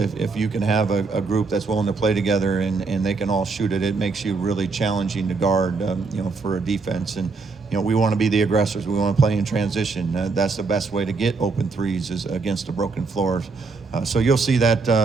if you can have a group that's willing to play together and they can all shoot it, it makes you really challenging to guard, for a defense. And we want to be the aggressors. We want to play in transition. That's the best way to get open 3s is against a broken floor. So you'll see that,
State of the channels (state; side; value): quieter; left; 4.3 dB